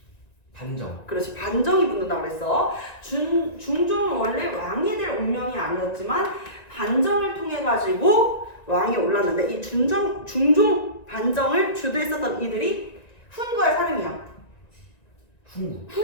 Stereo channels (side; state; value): right; late; 1.9 ms